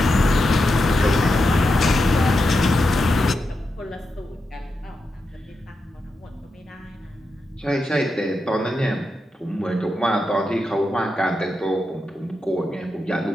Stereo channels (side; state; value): both; normal; correlation 0.87